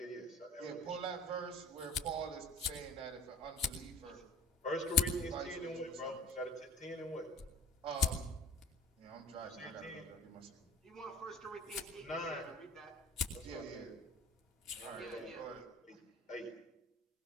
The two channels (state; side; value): normal; both; correlation 0.46